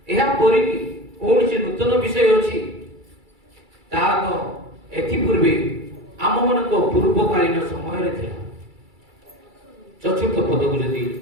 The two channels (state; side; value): late; left; 2.3 ms